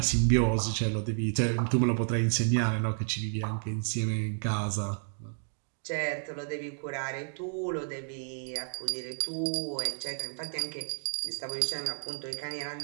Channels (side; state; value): left; silent; digital silence